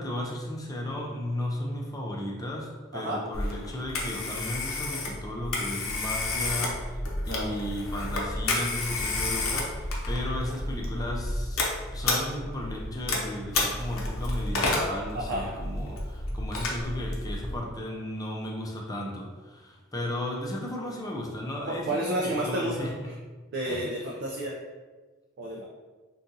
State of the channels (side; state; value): both; normal; correlation 0.46